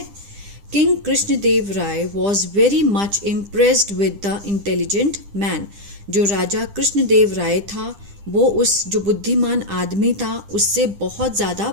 King Krishnadeva Raya was very much impressed with the intelligent man. जो राजा कृष्णदेव राय था वो उस जो बुद्धिमान आदमी था उससे बहुत ज़्यादा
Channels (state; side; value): late; left; 10 ms